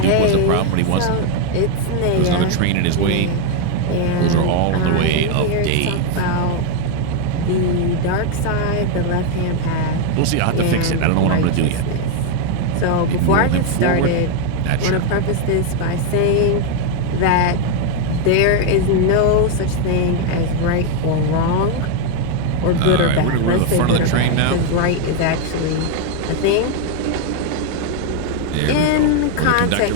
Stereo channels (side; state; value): both; different; correlation 0.01